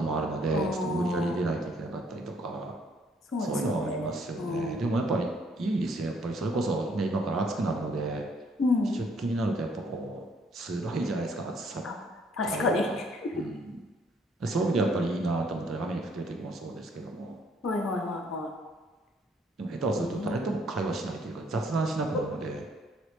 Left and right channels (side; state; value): both; normal; correlation 0.65